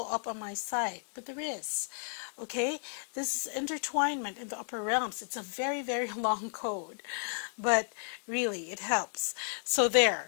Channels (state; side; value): silent; right; 56 dB below the other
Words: up on my site, but there is. Okay, this is intertwinement in the upper realms. It's a very, very long code, but really it helps. So